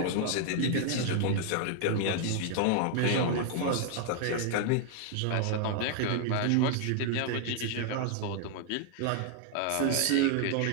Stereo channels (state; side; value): different; both; correlation 0.00